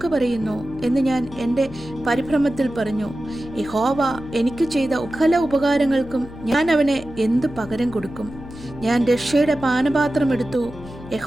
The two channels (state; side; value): noise; left; hum, 16 dB below the sound